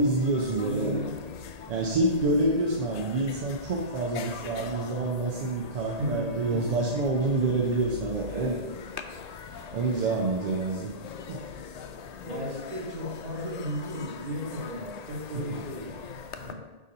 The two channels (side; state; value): left; late; 1.8 ms